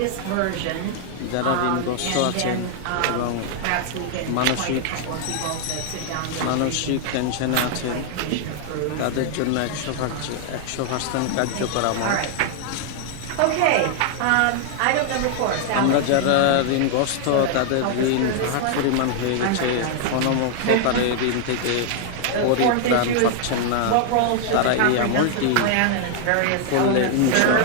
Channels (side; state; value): both; different; correlation 0.00